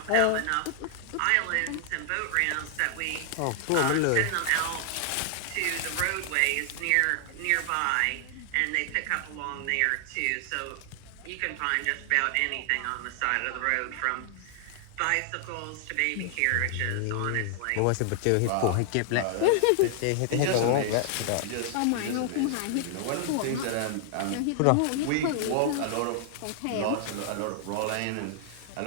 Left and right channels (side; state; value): both; different; correlation 0.00